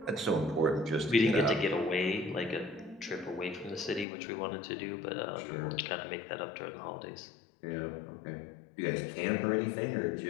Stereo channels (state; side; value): drops out; right; at 4.0 s